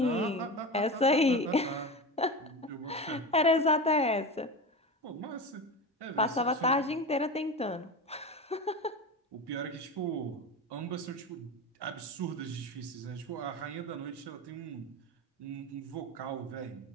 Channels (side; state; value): both; normal; correlation 0.25